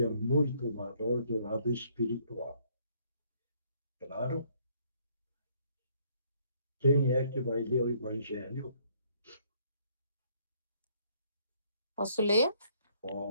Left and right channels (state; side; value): inverted; both; correlation -0.66